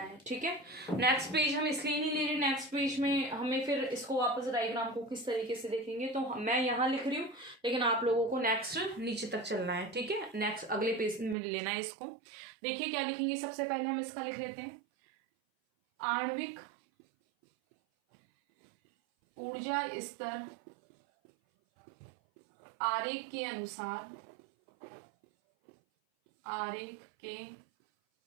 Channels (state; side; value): drops out; left; at 11.4 s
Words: ठीक है। नेक्स्ट पेज हम इसलिए नहीं ले रहे, नेक्स्ट पेज में हमें फिर इसको वापस डायग्राम को किस तरीके से देखेंगे, तो मैं यहाँ लिख रही हूँ लेकिन आप लोगों को नेक्स्ट नीचे तक चलना है, ठीक है। नेक्स्ट अगले पेज में लेना है इसको। देखिए क्या लिखेंगे, सबसे पहले हम इसका लिख लेते हैं, आणविक ऊर्जा स्तर आरेख के अनुसार, आरेख के